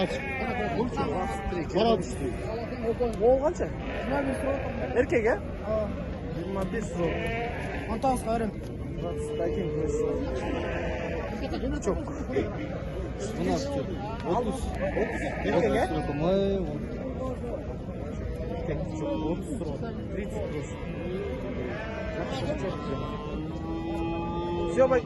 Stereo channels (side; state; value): both; identical; correlation 1.00